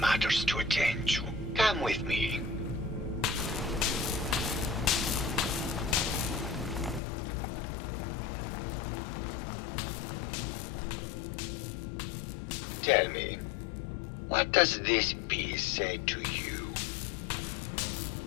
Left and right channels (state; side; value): drops out; right; at 7.0 s